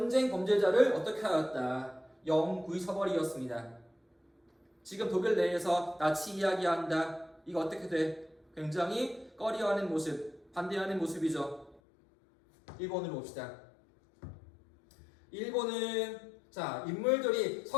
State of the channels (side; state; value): right; drops out; at 11.8 s